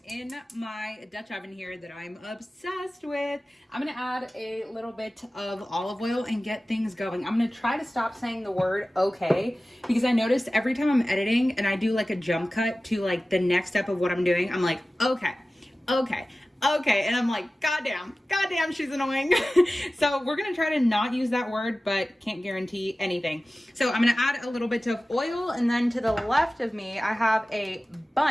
in my Dutch oven here that I'm obsessed with, I'm gonna add a little bit of olive oil and get things going. I'm gonna try to stop saying the word okay, because I noticed every time I'm editing and I do like a jump cut to like the next step of what I'm doing, I'm like, okay, and I'm like, goddamn, she's annoying. So we're gonna try to not use that word, but can't guarantee anything. So I'm gonna add a little bit of oil, and then to the left of me, I have a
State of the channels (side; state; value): both; normal; correlation 0.96